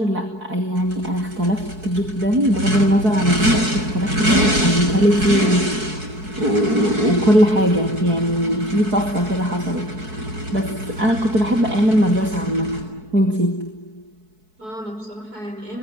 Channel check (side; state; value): left; late; 4.6 ms